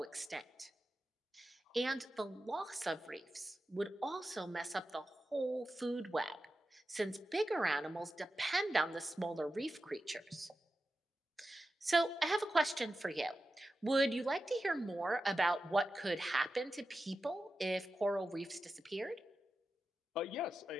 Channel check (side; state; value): both; normal; correlation 0.92